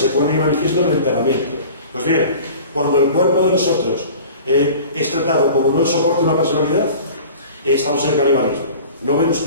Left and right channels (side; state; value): both; inverted; correlation -0.42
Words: pone en manifiesto en el enterramiento. Pues bien, cuando el cuerpo de nosotros es tratado como no el soporte de una personalidad, estamos en el canibalismo. ¿No ven